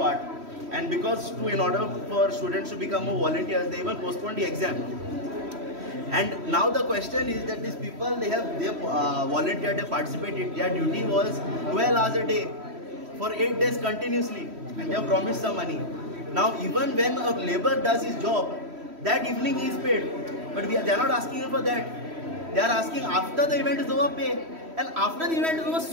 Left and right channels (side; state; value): left; late; 3.1 ms